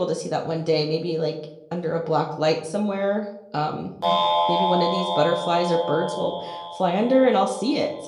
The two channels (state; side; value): identical; both; correlation 1.00